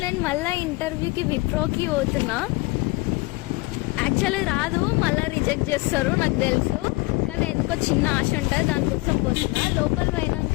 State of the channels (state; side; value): quieter; right; 23.2 dB